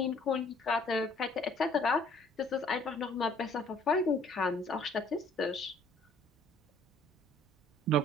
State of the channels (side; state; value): both; normal; correlation 0.59